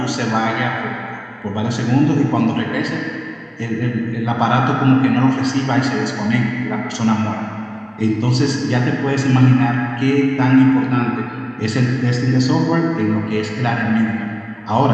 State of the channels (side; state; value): both; identical; correlation 1.00